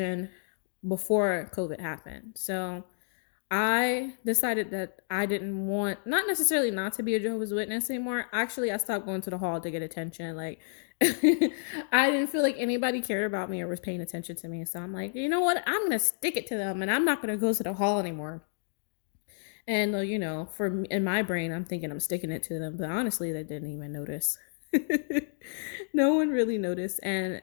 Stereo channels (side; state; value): right; silent; digital silence